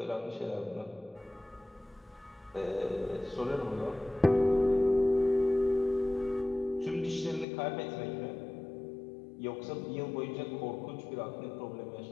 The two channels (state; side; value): drops out; right; at 7.5 s